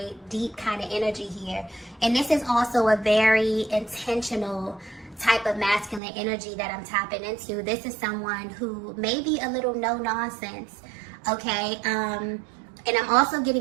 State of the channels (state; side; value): drops out; left; at 6.0 s